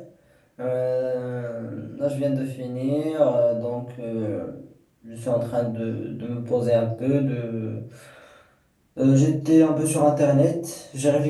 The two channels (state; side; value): identical; both; correlation 1.00